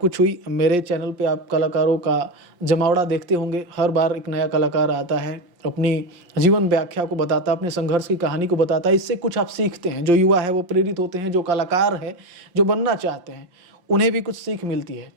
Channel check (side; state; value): left; late; 5.7 ms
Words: हुई। मेरे चैनल पे आप कलाकारों का जमावड़ा देखते होंगे। हर बार एक नया कलाकार आता है, अपनी जीवन व्याख्या को बताता है, अपने संघर्ष की कहानी को बताता है। इससे कुछ आप सीखते हैं। जो युवा है वो प्रेरित होते हैं, जो कलाकार है, जो बनना चाहते हैं, उन्हें भी कुछ सीख मिलती है।